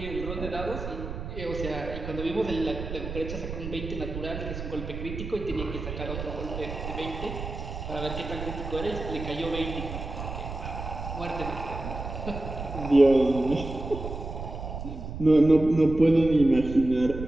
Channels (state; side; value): noise; right; rumble, 7 dB below the sound